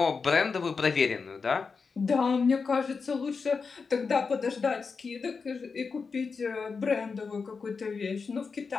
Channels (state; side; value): quieter; right; 5.0 dB